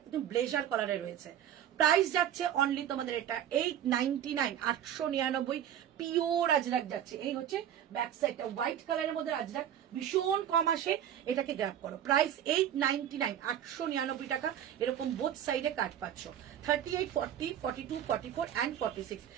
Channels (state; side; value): quieter; left; 10.3 dB